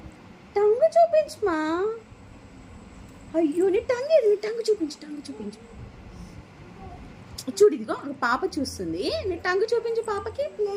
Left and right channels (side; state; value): both; identical; correlation 1.00